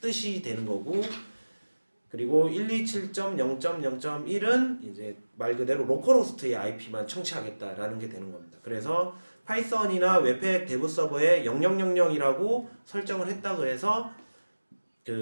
뜻이 되는 거고, 그리고 127.0.0.1은 이제 말 그대로 로컬 호스트의 IP만 청취하겠다라는 게 되는 겁니다. 그래서 파이썬이나 웹팩 대부 서버에 0000이라고 설정을 했다고 해서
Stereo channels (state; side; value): inverted; both; correlation -1.00